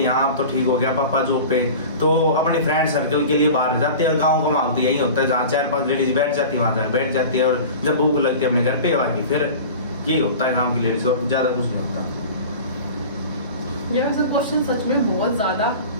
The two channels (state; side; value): inverted; both; correlation -0.36